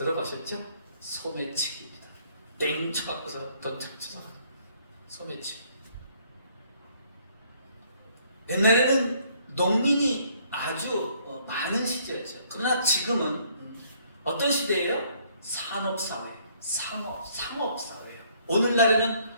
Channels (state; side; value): inverted; both; correlation -0.64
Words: 소매치기입니다. 땡 쳐갖고서 돈 찾쳐서 소매치기. 옛날에는 농민이 아주 많은 시대였죠. 그러나 지금은 어떤 시대예요? 산업사회, 상업사회예요. 오늘날에는